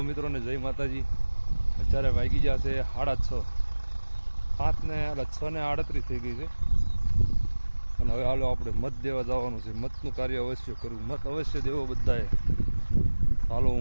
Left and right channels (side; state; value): both; inverted; correlation -1.00